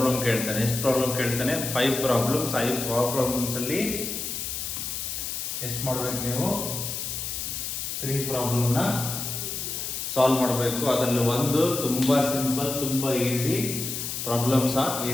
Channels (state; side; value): noise; left; hiss, 4 dB below the sound